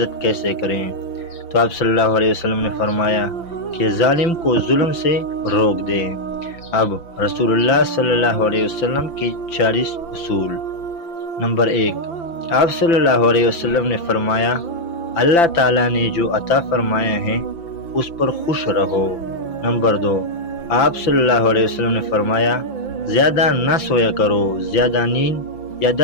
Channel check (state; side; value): late; right; 5.9 ms